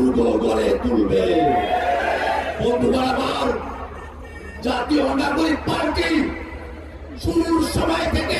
গড়ে তুলবে। বন্ধুগণ আমার, জাতীয় নাগরিক পার্টি শুরুর সময়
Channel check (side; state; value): both; identical; correlation 1.00